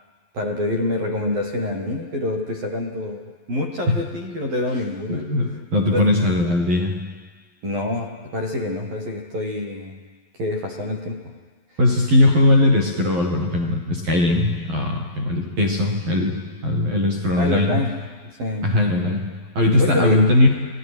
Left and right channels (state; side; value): late; left; 12 ms